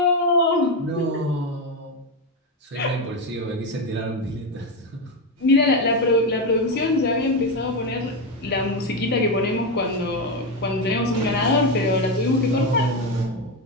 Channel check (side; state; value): both; normal; correlation 0.11